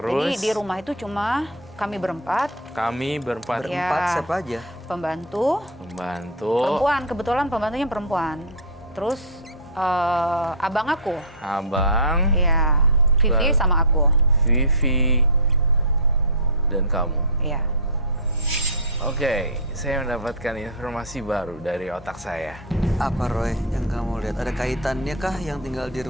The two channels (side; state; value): both; normal; correlation -0.04